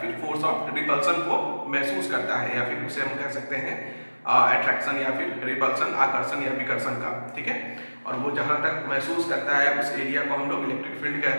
फिर फोर्स ऑफ रिपल्सन को महसूस करता है, या फिर उसे हम कह सकते हैं अट्रैक्शन या फिर रिपल्सन, आकर्षण या विकर्षण का। ठीक है, और वो जहाँ तक महसूस करता है उस एरिया को हम लोग इलेक्ट्रिक फील्ड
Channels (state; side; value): inverted; both; correlation -1.00